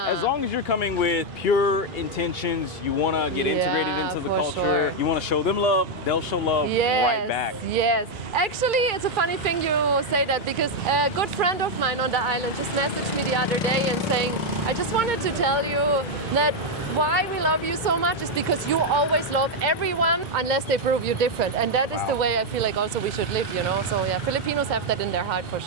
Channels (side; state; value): both; normal; correlation 0.01